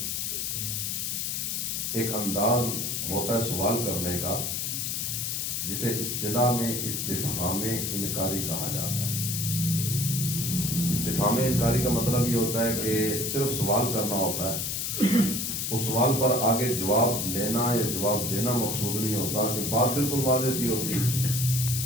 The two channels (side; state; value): left; noise; hiss, 1 dB below the sound